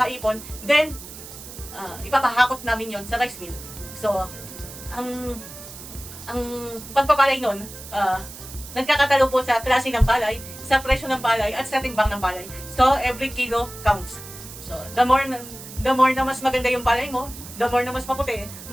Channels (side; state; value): right; noise; hiss, 14 dB below the sound